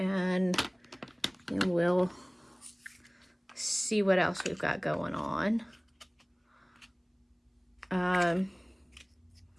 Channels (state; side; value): identical; both; correlation 1.00